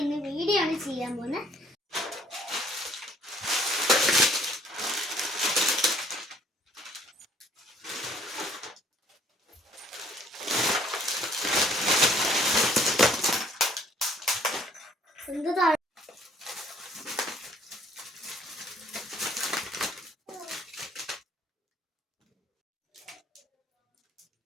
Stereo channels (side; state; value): both; normal; correlation 0.60